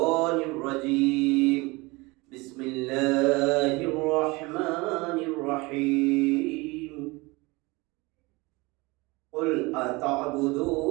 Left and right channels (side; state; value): left; quieter; 24.2 dB